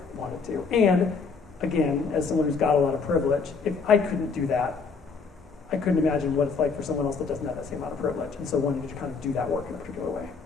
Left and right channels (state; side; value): quieter; right; 5.0 dB